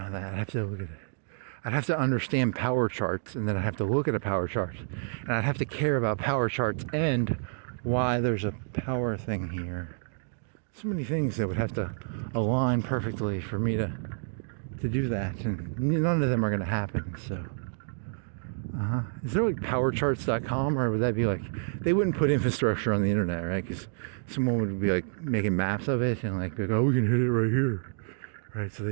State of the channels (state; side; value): silent; left; digital silence